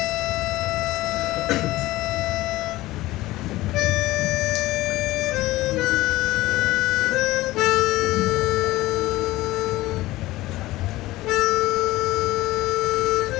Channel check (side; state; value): right; quieter; 17.8 dB